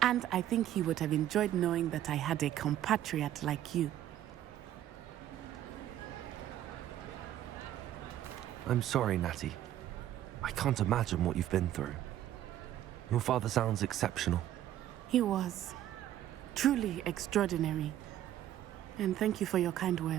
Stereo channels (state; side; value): quieter; left; 12.3 dB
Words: And I think he would have enjoyed knowing that I had a compatriot like you. I'm sorry, Natty. I can't imagine what you've been through. Your father sounds exceptional. He was. Truly extraordinary. And thank you for your kind